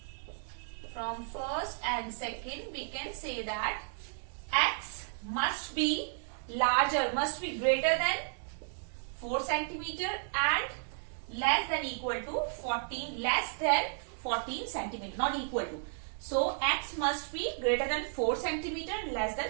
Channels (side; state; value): left; silent; digital silence